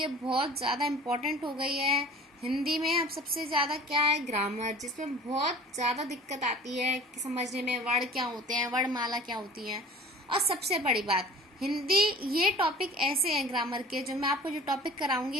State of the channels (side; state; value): both; normal; correlation 0.44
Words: बहुत ज़्यादा इम्पोर्टेंट हो गई है। हिंदी में अब सबसे ज़्यादा क्या है, ग्रामर, जिसमें बहुत ज़्यादा दिक्कत आती है कि समझने में वर्ण क्या होते हैं, वर्णमाला क्या होती है। और सबसे बड़ी बात, हिंदी ये टॉपिक ऐसे हैं ग्रामर के, जो मैं आपको जो टॉपिक